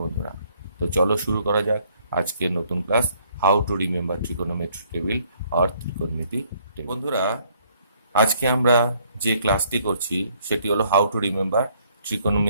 বন্ধুরা। তো চলো শুরু করা যাক আজকের নতুন class, how to remember trigonometry table or ত্রিকোণমিতি টেবিল। বন্ধুরা, আজকে আমরা যে ক্লাসটি করছি সেটি হলো হাউ টু রিমেম্বার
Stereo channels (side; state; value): both; inverted; correlation -0.65